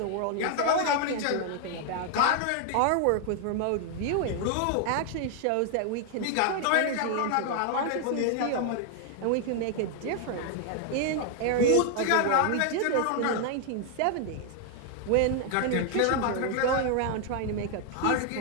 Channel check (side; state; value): both; different; correlation 0.00